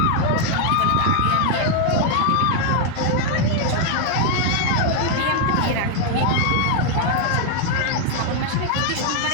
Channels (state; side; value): different; both; correlation 0.00